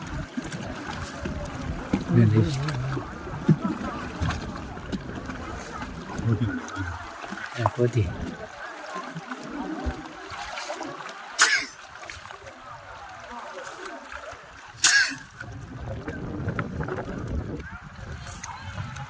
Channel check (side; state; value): both; identical; correlation 1.00